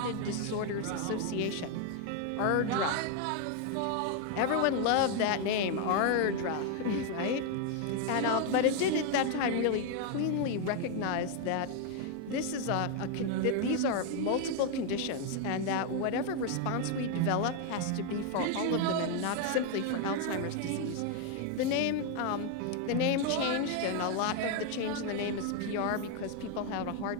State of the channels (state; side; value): different; both; correlation 0.01